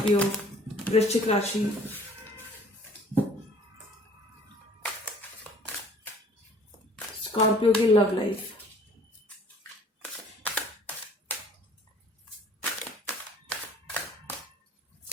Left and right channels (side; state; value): both; normal; correlation 0.53